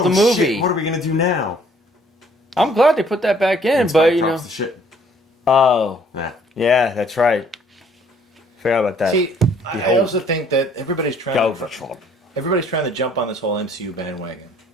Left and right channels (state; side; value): normal; both; correlation 0.60